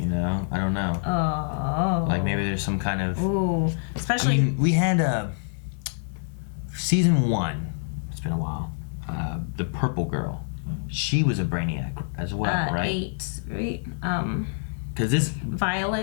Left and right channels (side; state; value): right; silent; 61 dB below the other